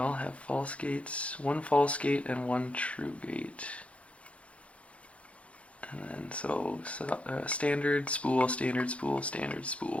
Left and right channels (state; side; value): late; right; 0.063 ms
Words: have false gates. One false gate and one true gate. And then standard, spool, standard, spool, standard,